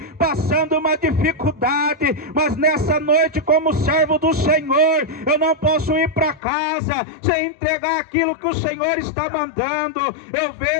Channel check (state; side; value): drops out; right; at 6.4 s